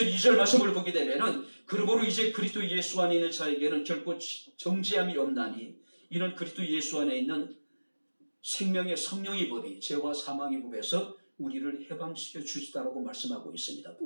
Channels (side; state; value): both; inverted; correlation -1.00